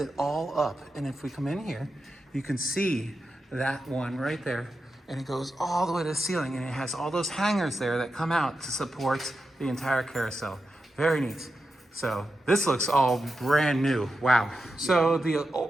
all up. And if we come in here, you can see that one right there. And it goes all the way to the ceiling, and it has all those hangers there that come out to support the entire carousel. Very neat. So this looks all brand new. Wow. So the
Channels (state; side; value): normal; both; correlation 0.89